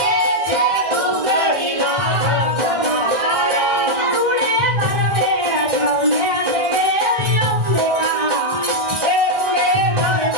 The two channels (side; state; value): left; late; 1.6 ms